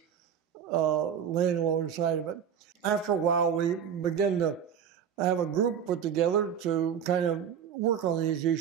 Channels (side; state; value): left; quieter; 8.2 dB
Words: laying alongside of it. After a while, we began to have a group put together to kind of work on these